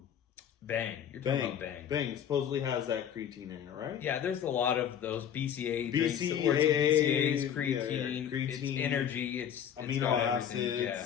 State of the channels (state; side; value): quieter; right; 9.0 dB